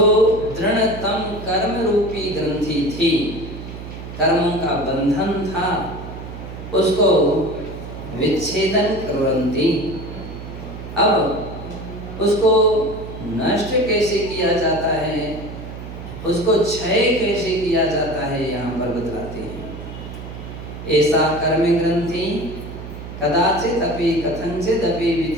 दृढ़तम कर्म रूपी ग्रंथि थी, कर्मों का बंधन था, उसको विच्छेदन कुर्वन्ति। अब उसको नष्ट कैसे किया जाता है उसको क्षय कैसे किया जाता है यहाँ पर बतलाते हैं। ऐसा कर्म ग्रंथि कदाचित अपि कथंचित अपि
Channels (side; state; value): right; noise; hum, 11 dB below the sound